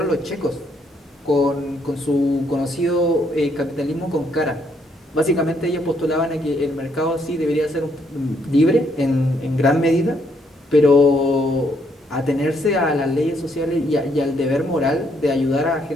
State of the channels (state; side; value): normal; both; correlation 0.71